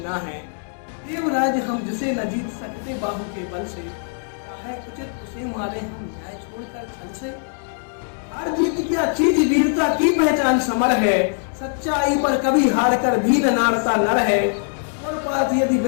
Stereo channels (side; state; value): right; silent; digital silence